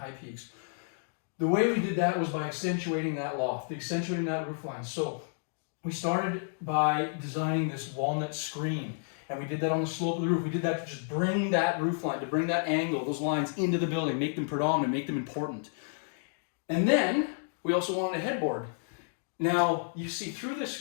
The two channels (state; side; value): silent; right; digital silence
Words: peaks. The way we did that was by accentuating that loft, accentuating that roof line. So we started by designing this walnut screen, and we did that on the slope of the roof. We did that to just bring that roof line, to bring that angle, those lines into the building, make them predominant, make them important. And then we also wanted a headboard. Now, you see through the